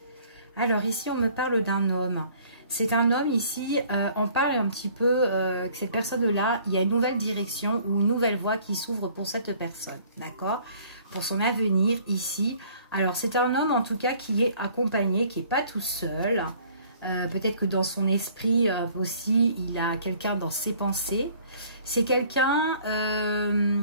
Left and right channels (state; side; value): inverted; both; correlation -0.56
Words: Alors ici, on me parle d'un homme. C'est un homme ici, on parle un petit peu que cette personne-là, il y a une nouvelle direction ou une nouvelle voie qui s'ouvre pour cette personne, d'accord? Pour son avenir ici. Alors, c'est un homme en tout cas qui est accompagné, qui n'est pas tout seul. Peut-être que dans son esprit aussi, il a quelqu'un dans ses pensées. C'est quelqu'un...